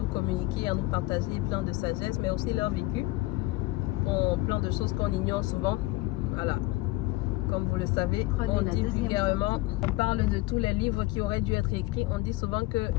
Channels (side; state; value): right; quieter; 19.5 dB